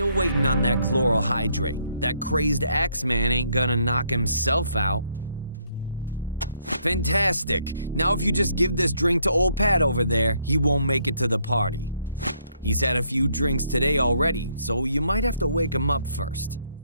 waiting on that chloral hydrate. That crazed Axeman ain't gonna knock himself out. Fantastic. Now if you just give this drink to old Pat over there, he won't make it to the party. He's had a few drinks today already, so you might have to wake him up first.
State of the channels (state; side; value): inverted; both; correlation -0.71